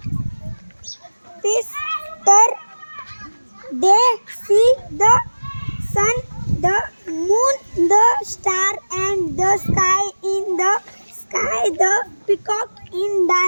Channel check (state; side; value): inverted; both; correlation -1.00